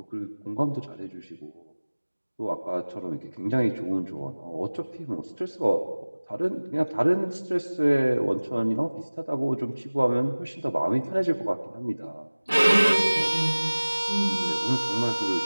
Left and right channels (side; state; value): both; inverted; correlation -1.00